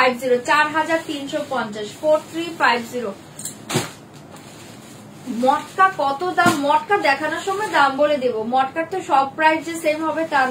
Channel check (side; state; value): both; identical; correlation 1.00